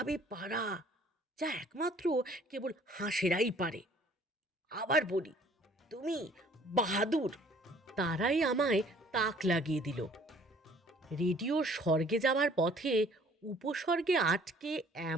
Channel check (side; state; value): both; normal; correlation 0.56